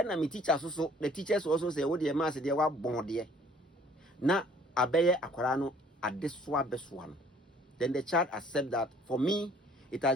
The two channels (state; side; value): normal; both; correlation 0.57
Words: na me teachers also, the teachers also say, oh dear mass they were born there. Na abeye akwara no adeswa beswa. Then the child accept that for me, it